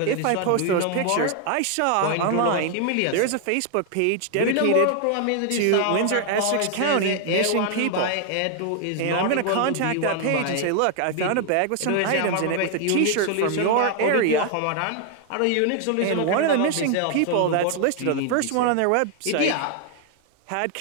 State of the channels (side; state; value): both; different; correlation 0.00